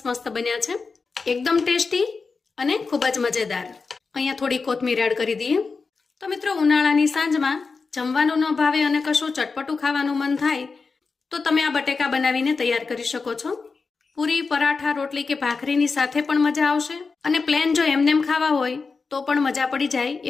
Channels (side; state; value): right; quieter; 4.6 dB